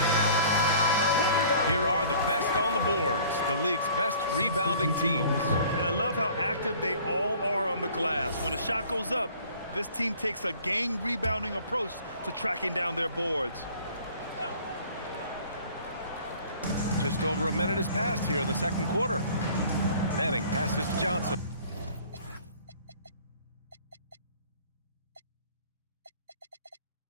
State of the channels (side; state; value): both; inverted; correlation -0.51